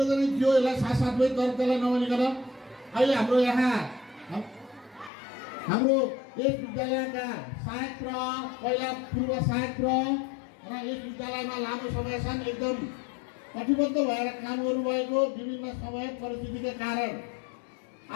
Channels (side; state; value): right; drops out; at 5.1 s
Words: थियो, यसलाई साथसाथमै त्यसलाई नभनिकन अहिले हाम्रो यहाँ हाम्रो यस विद्यालयका सहायक प्र, पहिला पूर्व सहायक प्र, र यस विद्यालयमा लामो समयसम्म एकदम कटिबद्ध भएर काम गर्नुभएको विभिन्न समय परिस्थितिका कारण